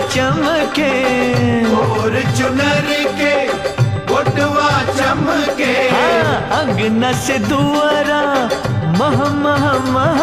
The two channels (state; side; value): identical; both; correlation 1.00